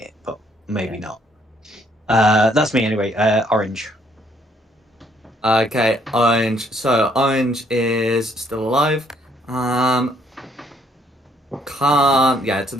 but maybe not. That's me anyway. Orange. Okay, Orange. So, Orange is still alive. Yeah, so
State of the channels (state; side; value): normal; both; correlation 0.68